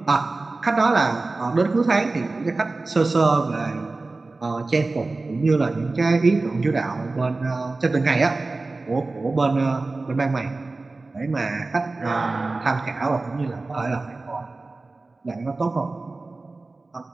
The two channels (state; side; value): quieter; left; 3.4 dB